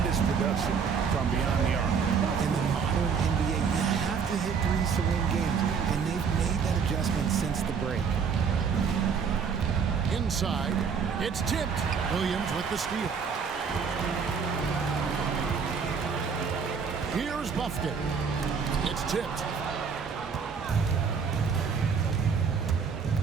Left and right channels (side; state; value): left; quieter; 6.1 dB